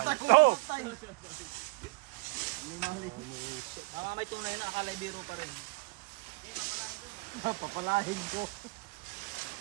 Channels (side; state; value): left; quieter; 27.1 dB